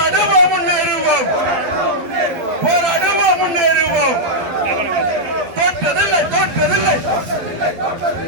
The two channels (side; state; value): left; late; 12 ms